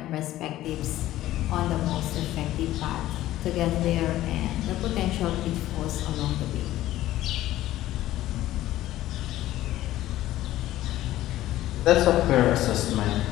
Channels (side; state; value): right; quieter; 14.7 dB